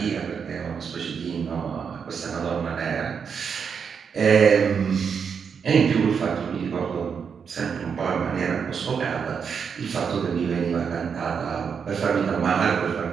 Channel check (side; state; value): left; quieter; 6.5 dB